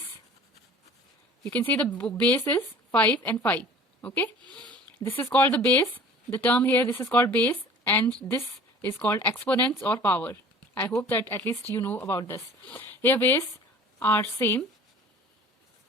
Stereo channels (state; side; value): normal; both; correlation 0.46